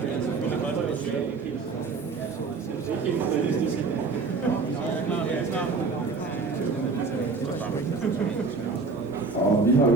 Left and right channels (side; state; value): left; quieter; 4.3 dB